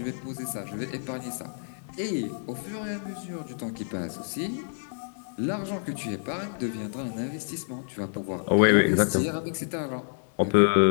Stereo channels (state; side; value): silent; right; digital silence